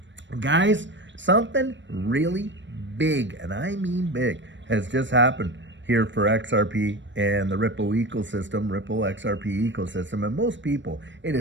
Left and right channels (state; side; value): late; left; 0.53 ms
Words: Guys, something really big, and I mean big, has just happened here for XRP and the Ripple ecosystem, Ripple XRP ecosystem. And most people, it